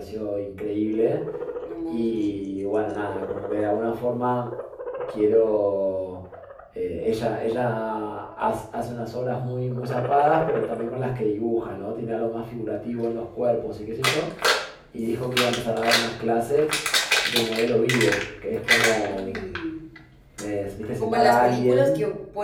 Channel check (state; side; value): identical; both; correlation 1.00